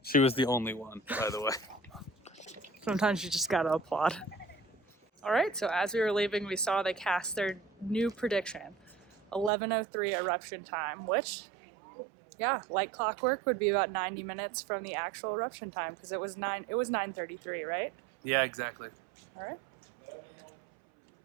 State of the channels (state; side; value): drops out; left; at 9.5 s